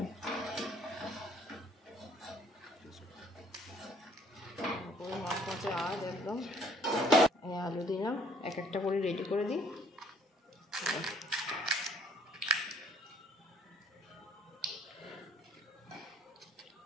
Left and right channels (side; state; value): both; normal; correlation 0.61